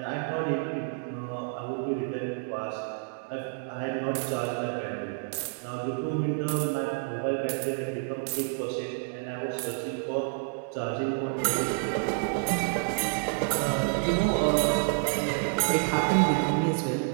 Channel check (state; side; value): silent; left; 59 dB below the other